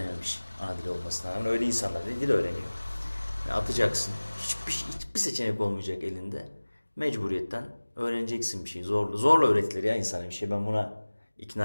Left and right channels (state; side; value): inverted; both; correlation -1.00